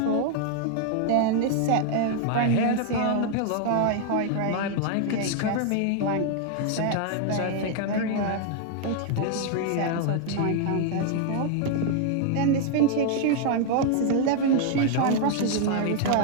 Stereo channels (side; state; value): both; different; correlation 0.00